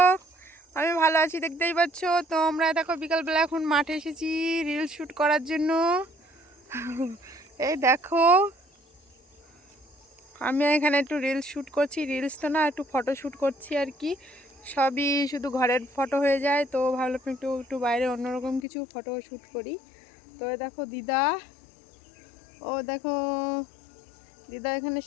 আমি ভালো আছি, দেখতেই পাচ্ছ। তো আমরা দেখো বিকালবেলা এখন মাঠে এসেছি রিল শ্যুট করার জন্য। এই দেখো আমি এখানে একটু রিলস শ্যুট করছি, রিলস তো না, একটু ফটো শ্যুট করছি আর কি। সবই শুধু ঘরের ফটো হয়ে যায়, তো ভাবলাম একটু একটু বাইরে অন্যরকম কিছু ফটো শ্যুট করি। তো দেখো দিদা, ও দেখো দিদা এখানে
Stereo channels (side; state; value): right; drops out; at 18.6 s